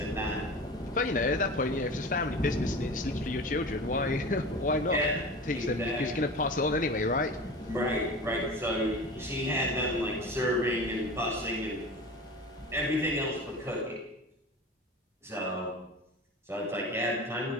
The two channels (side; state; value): both; normal; correlation 0.33